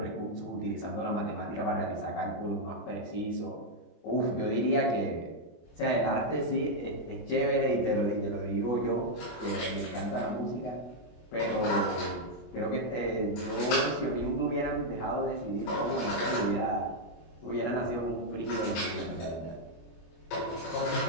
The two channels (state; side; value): late; right; 25 ms